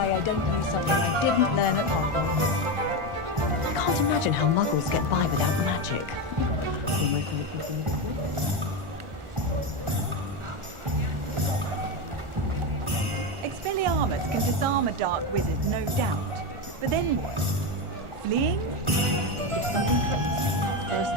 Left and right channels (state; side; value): late; left; 1.4 ms